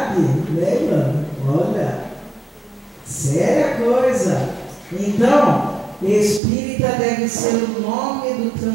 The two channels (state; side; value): drops out; left; at 6.4 s